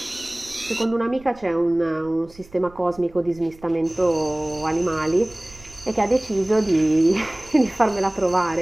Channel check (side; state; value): right; noise; rumble, 23 dB below the sound